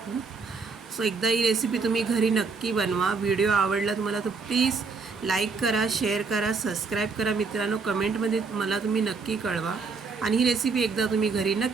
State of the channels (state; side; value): quieter; left; 4.6 dB